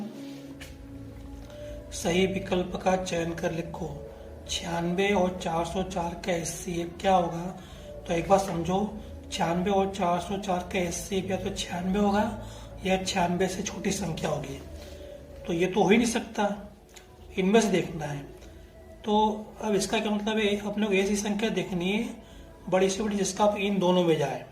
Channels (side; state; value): both; identical; correlation 1.00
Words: सही विकल्प का चयन कर लिखो। 96 और 404 का HCF क्या होगा? तो एक बार समझो, 96 और 404 का HCF या तो 96 होगा या 96 से छोटी संख्या होगी। तो ये तो हो ही नहीं सकता, इनमें से देखना है। तो अब इसका क्या मतलब है, अपने को ऐसी संख्या देखनी है बड़ी से बड़ी जिसका इन दोनों में जाए।